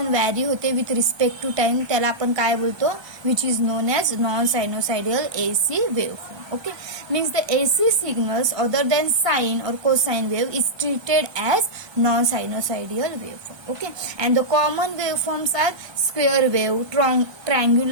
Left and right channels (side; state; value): left; late; 1.2 ms